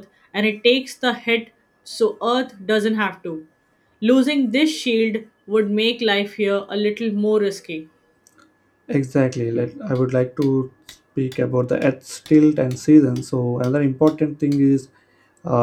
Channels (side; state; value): both; identical; correlation 1.00